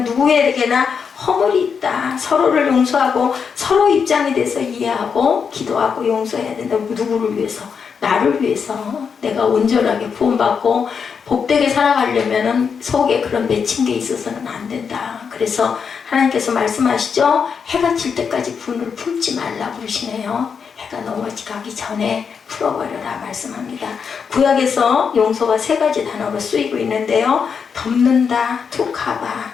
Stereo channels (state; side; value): quieter; right; 6.3 dB